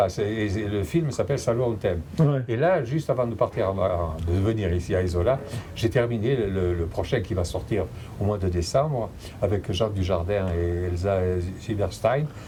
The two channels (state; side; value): identical; both; correlation 1.00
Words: le film s'appelle Salon en thème. Ouais. Et là, juste avant de partir, de venir ici à Isola, j'ai terminé le prochain qui va sortir au mois de décembre avec Jacques Dujardin et Elsa Silberstein,